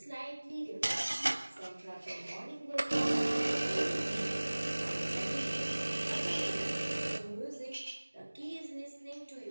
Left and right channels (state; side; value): inverted; both; correlation -1.00